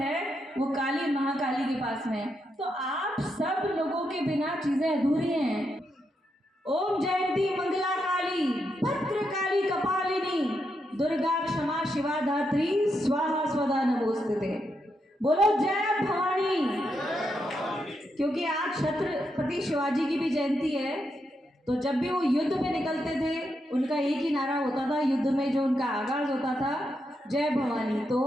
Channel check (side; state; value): both; normal; correlation 0.82